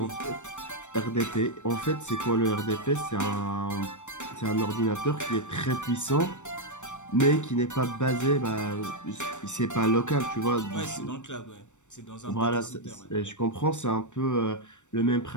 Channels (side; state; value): right; late; 0.84 ms